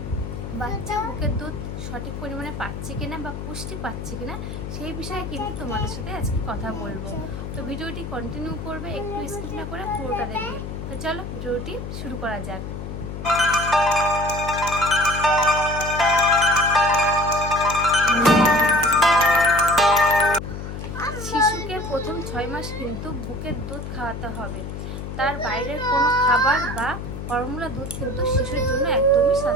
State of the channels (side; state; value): left; noise; hum, 7 dB below the sound